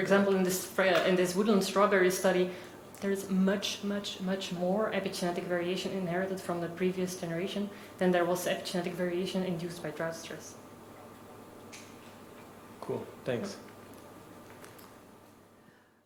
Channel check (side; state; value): both; identical; correlation 1.00